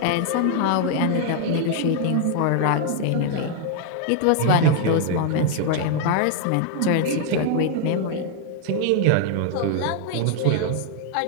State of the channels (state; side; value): different; both; correlation 0.00